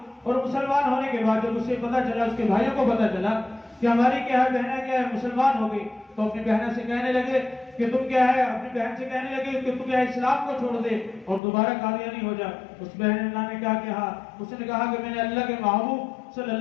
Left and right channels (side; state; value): right; drops out; at 11.4 s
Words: اور مسلمان ہونے کے بعد جب اسے پتا چلا، اس کے بھائیوں کو پتا چلا کہ ہماری کیا ہے بہنیں کیا ہے مسلمان ہو گئی، تو اپنی بہنیں سے کہنے لگے کہ تم کیا ہے اپنی بہن سے کہنے لگے کہ تم کیا ہے اسلام کو چھوڑ دے اور دوبارہ قادیانی ہو جا۔ اس بہن نے کیا کہا، اس نے کہا کہ میں نے اللہ کے محبوب صلی